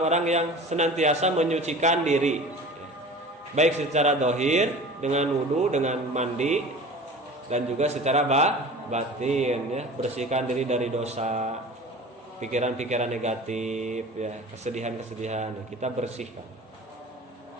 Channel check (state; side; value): normal; both; correlation 0.39